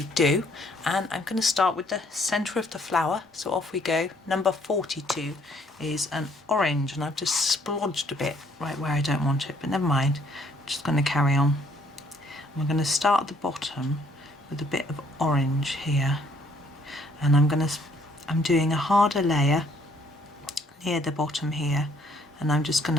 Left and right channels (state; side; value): normal; both; correlation 0.65